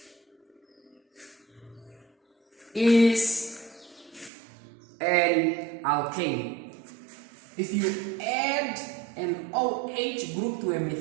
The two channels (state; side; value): drops out; left; at 4.3 s